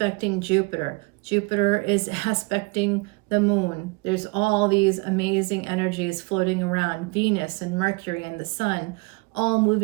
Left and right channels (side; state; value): left; quieter; 28.1 dB